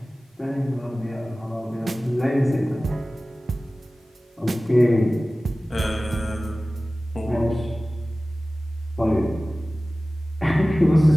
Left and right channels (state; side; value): normal; both; correlation 0.97